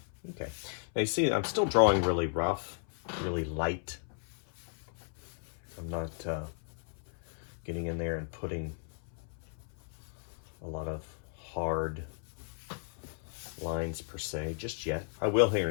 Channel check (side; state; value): right; silent; 54 dB below the other